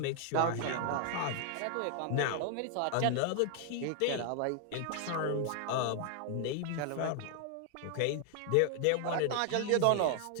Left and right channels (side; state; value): both; different; correlation 0.00